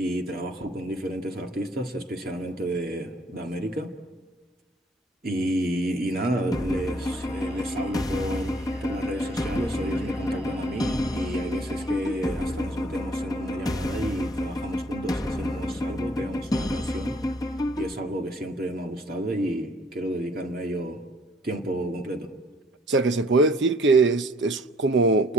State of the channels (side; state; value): both; normal; correlation 0.60